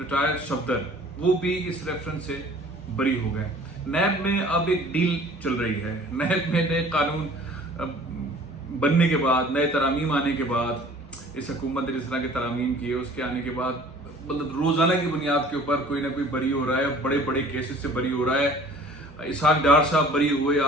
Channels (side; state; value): both; normal; correlation 0.50